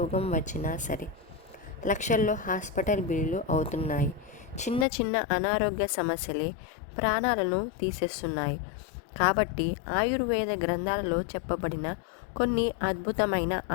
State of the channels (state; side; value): drops out; right; at 4.9 s